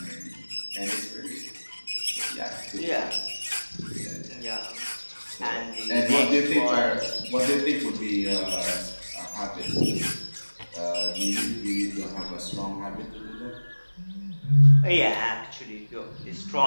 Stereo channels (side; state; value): both; inverted; correlation -1.00